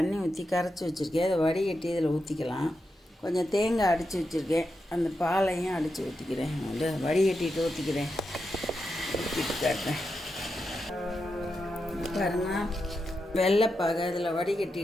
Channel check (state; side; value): normal; both; correlation 0.87